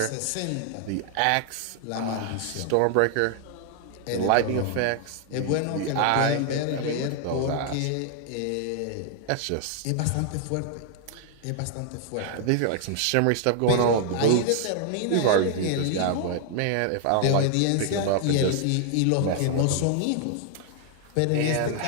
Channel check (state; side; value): different; both; correlation 0.00